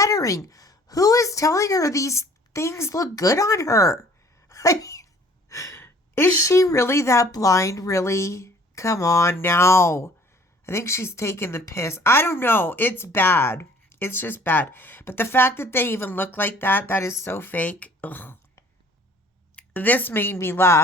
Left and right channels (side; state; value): both; normal; correlation 0.54